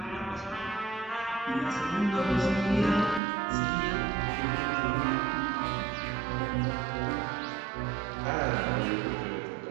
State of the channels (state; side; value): drops out; left; at 3.2 s